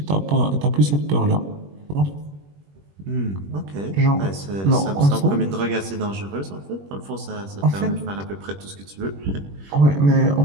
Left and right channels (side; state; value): left; late; 21 ms